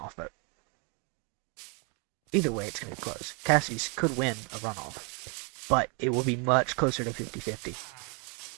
vote. Either way, it's going to be close. Cassidy's could win a runoff, but it will be much closer to 50-50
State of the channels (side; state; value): left; quieter; 34.7 dB